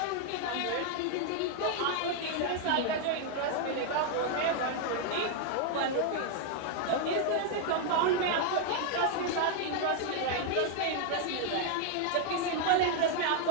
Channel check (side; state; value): both; different; correlation 0.00